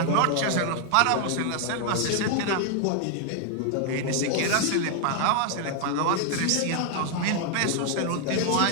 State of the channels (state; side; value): different; both; correlation 0.00